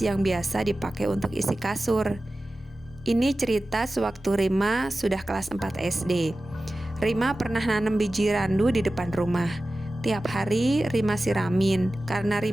yang biasa dipakai untuk isi kasur. Ini cerita sewaktu Rima sudah kelas 4 SD. Rima pernah nanam biji randu di depan rumah. Tiap hari Rima siramin karena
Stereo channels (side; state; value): both; normal; correlation 0.95